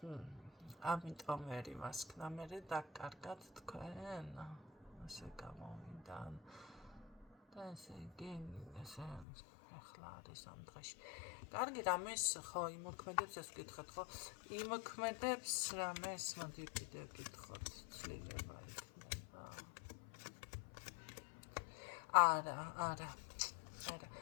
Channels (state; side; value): drops out; right; at 9.2 s